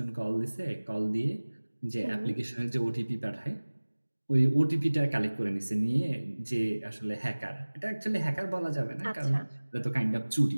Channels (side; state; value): both; inverted; correlation -1.00